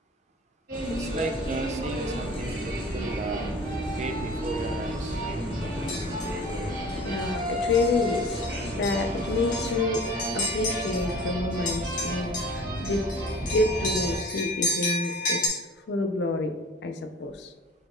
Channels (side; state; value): both; normal; correlation 0.43